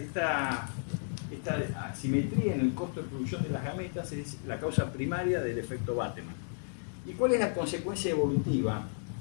asimetría en el costo de producción de las gametas es la causa primaria del efecto Bateman. ¿Y cuál es la consecuencia evolutiva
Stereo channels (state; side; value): silent; right; digital silence